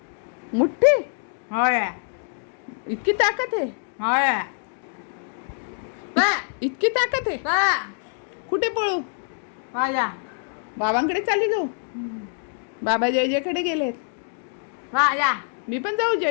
मुठ्ठी होय इतकी ताकद आहे, होय बा इतकी ताकद आहे. बा कुठे पळू? माझा बाबांकडे चालली जाऊ. बाबा जय जयकडे गेलेत. माझा मी पण जाऊ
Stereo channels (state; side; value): silent; right; digital silence